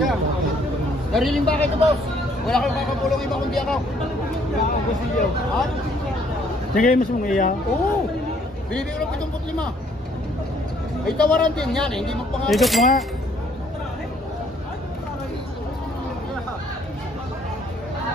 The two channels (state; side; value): normal; both; correlation 0.64